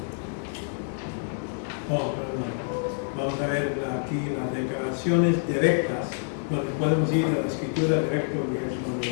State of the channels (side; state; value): right; silent; digital silence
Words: Vamos a ver aquí las declaraciones directas, donde podemos ir a la escritura directa,